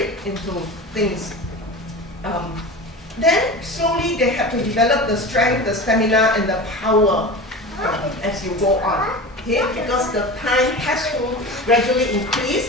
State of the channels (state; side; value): normal; both; correlation 0.31